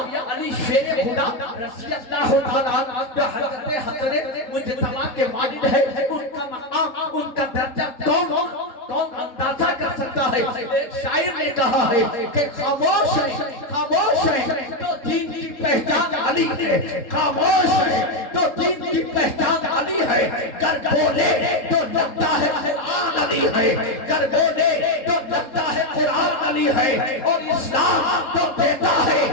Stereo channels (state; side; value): late; right; 3.7 ms